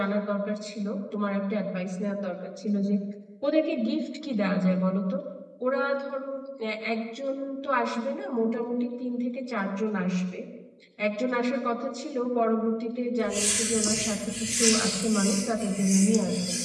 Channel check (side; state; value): both; identical; correlation 1.00